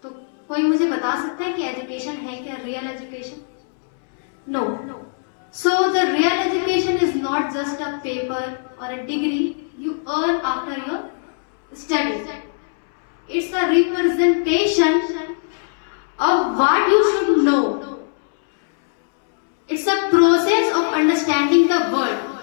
तो कोई मुझे बता सकता है कि एजुकेशन है क्या real education? No. So the real education is not just a paper और a degree you earn after your study. It's a representation of what you should know. It's a process of understanding the world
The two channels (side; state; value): right; silent; 65 dB below the other